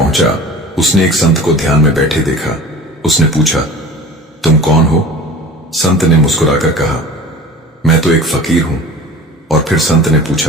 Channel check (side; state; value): both; normal; correlation 0.39